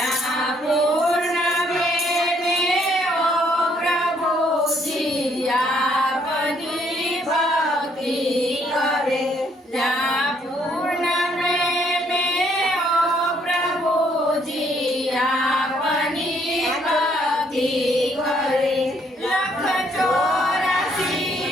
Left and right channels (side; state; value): both; normal; correlation 0.68